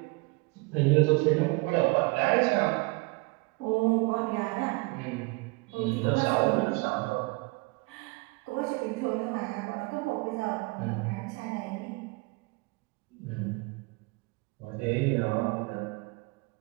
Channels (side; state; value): left; quieter; 26.6 dB